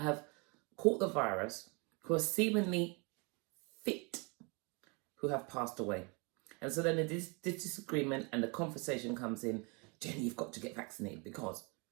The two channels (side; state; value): left; quieter; 31.3 dB